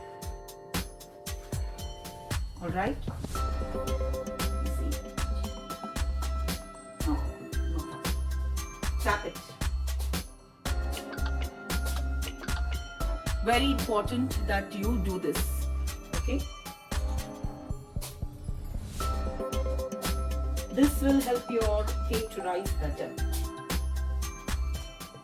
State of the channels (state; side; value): identical; both; correlation 1.00